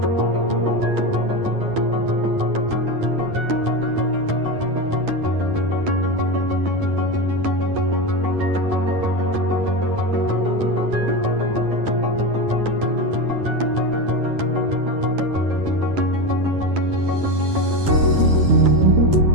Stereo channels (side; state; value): left; late; 9.9 ms